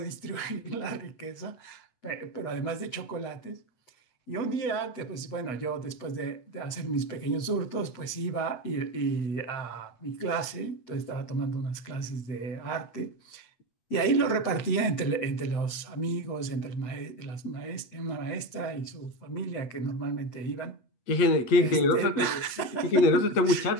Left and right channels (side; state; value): right; late; 8.3 ms